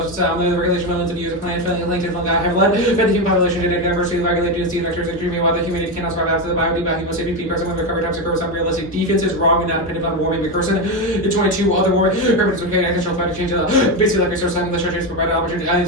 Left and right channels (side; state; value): both; normal; correlation 0.12